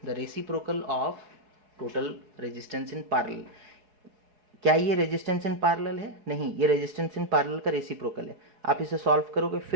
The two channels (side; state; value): left; late; 4.7 ms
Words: the reciprocal of total resistance in parallel। क्या ये resistance in parallel है, नहीं, ये resistance in parallel का reciprocal है। आप इसे सॉल्व करोगे,